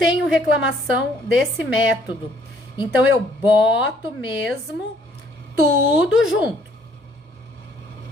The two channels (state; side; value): normal; both; correlation 0.63